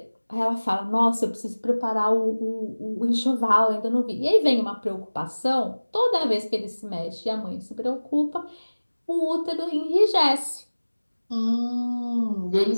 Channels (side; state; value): both; inverted; correlation -1.00